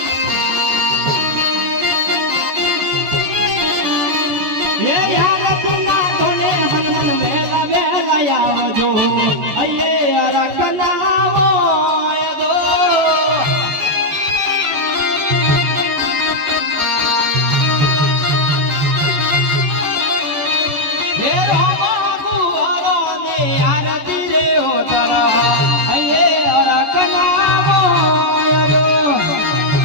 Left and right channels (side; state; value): left; late; 14 ms